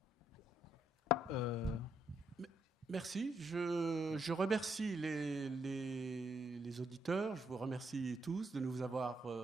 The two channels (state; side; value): normal; both; correlation 0.75